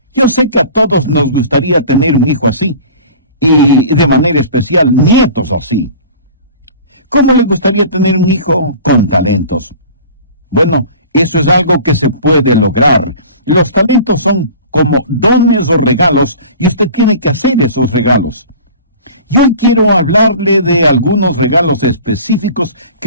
Yo sé que a todos nos gustaría tener un hijo así, y de manera especial nietos así. ¿Cómo le gustaría tener un hijo con talentos? Bueno, eso es algo que se puede lograr. Los talentos son como dones o regalos, y usted tiene que hacer esos regalos. Y hoy quiero hablarle de algunos regalos específicos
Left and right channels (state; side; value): inverted; both; correlation -0.42